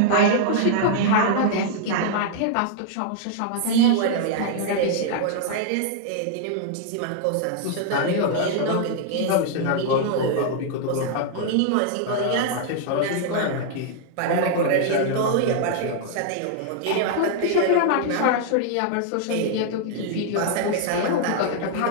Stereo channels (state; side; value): different; both; correlation -0.01